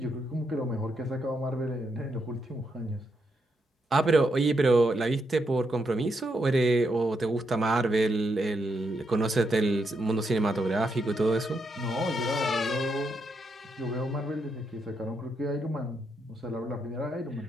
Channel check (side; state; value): both; normal; correlation 0.80